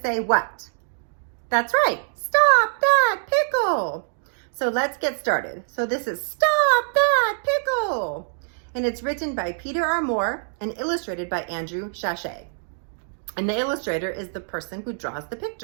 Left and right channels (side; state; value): left; silent; digital silence